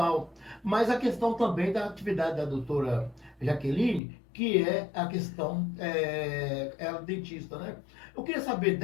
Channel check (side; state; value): right; drops out; at 4.0 s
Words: mas a questão também da atividade da doutora Jaqueline, que é a questão, ela é dentista, né? Eu queria saber